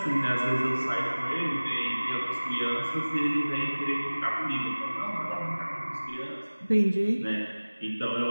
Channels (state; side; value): inverted; both; correlation -1.00